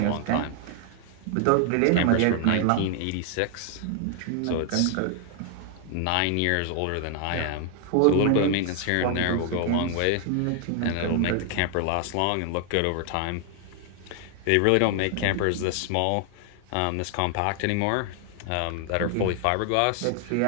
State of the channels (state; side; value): different; both; correlation 0.00